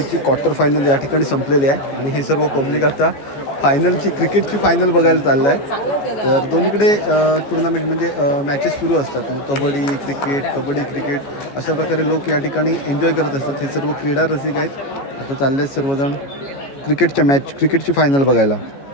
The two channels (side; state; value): right; late; 14 ms